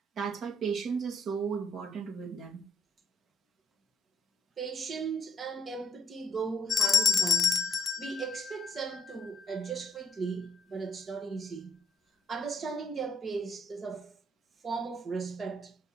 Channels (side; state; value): both; normal; correlation 0.70